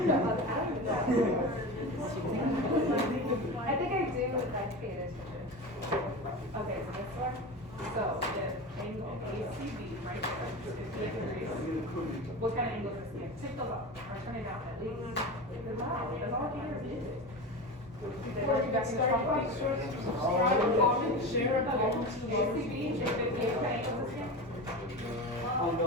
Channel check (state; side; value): normal; both; correlation 0.26